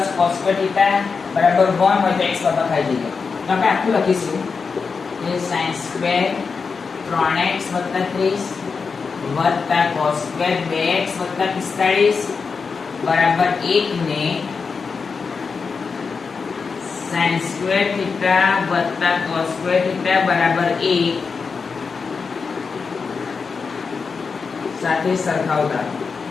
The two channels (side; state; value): right; quieter; 5.1 dB